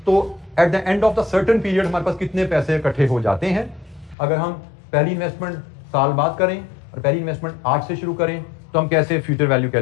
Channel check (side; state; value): right; drops out; at 4.2 s